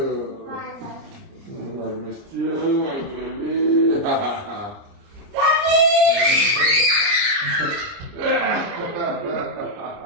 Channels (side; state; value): left; late; 29 ms